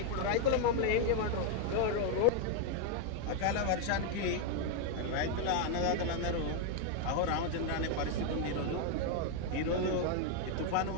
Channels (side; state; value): both; different; correlation 0.01